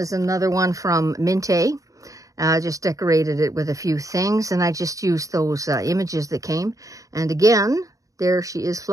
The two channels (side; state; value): left; late; 0.16 ms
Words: is another one from Mintay. I just decorated it with a few things, and I just used those images that came. And again, there she is